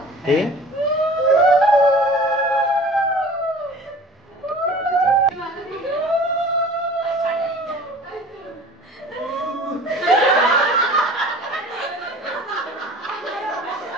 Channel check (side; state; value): both; normal; correlation 0.44